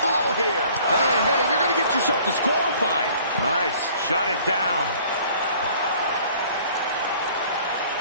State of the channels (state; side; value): inverted; both; correlation -0.53